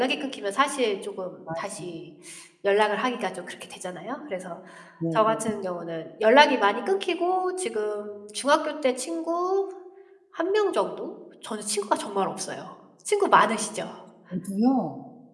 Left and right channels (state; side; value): identical; both; correlation 1.00